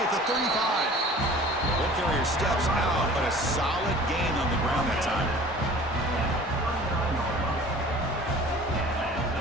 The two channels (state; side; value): normal; both; correlation 0.45